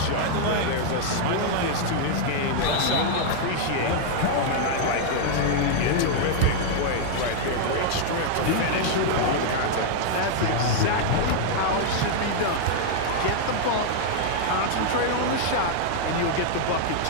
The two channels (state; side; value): different; both; correlation 0.00